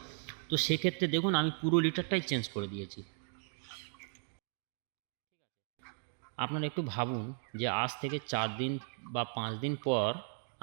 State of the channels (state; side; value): silent; left; 54 dB below the other